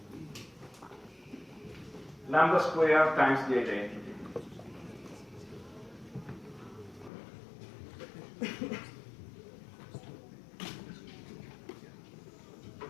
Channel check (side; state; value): right; drops out; at 7.1 s